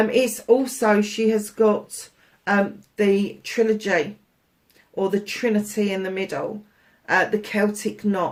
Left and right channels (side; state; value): both; identical; correlation 1.00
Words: also, she has got the trilogy, or the Trinity in the middle, the Celtic